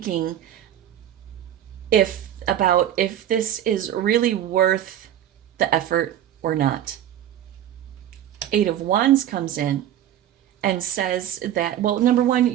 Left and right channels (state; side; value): quieter; left; 11.2 dB